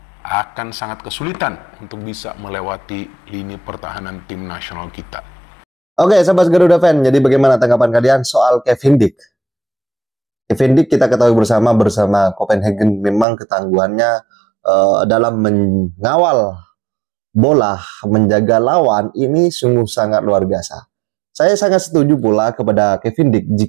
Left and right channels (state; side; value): drops out; left; at 13.2 s